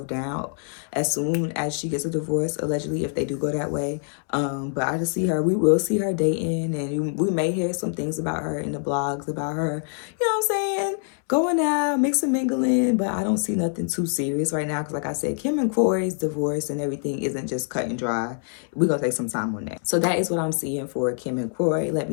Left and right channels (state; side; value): silent; right; 62 dB below the other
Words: down as soon as she gets a divorce, allegedly, if they do go that way. But I just see her, we will see her dating, and we may hear some things about her in the blogs about her, you know what I'm saying, going out, mixing, mingling, but I don't see nothing too serious right now, because like I said, Kim and Kroy's divorce and everything isn't just cut and dry. We're going to take some time on that. So that is what I'm seeing for Kim and Kroy. Let